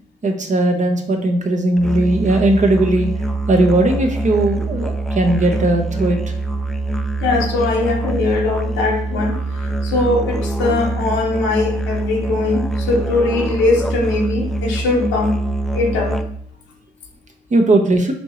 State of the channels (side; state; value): both; normal; correlation 0.69